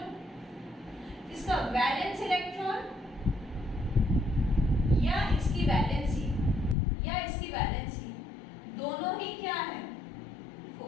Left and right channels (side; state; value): right; drops out; at 6.8 s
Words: इसका वैलेंस इलेक्ट्रॉन या इसकी वैलेंसी दोनों ही क्या है,